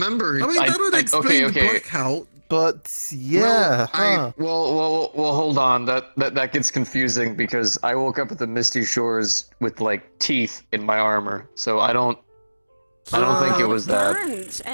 I mean, that would explain the blackout, but yeah, Well, hold on. That gets confusing because I woke up at the Misty Shores with like teeth in my armor, so I don't think it was that. burns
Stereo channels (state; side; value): inverted; both; correlation -1.00